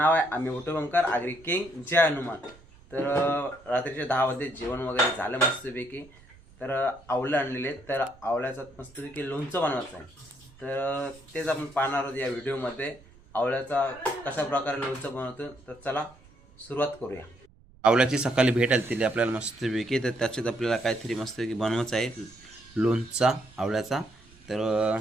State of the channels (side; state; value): right; noise; rumble, 25 dB below the sound